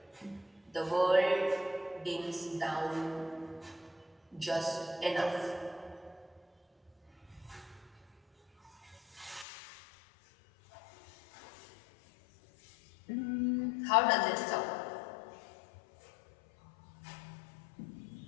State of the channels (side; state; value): right; drops out; at 9.5 s